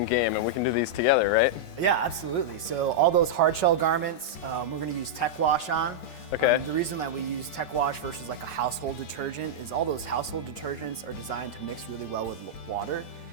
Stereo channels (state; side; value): late; right; 8.5 ms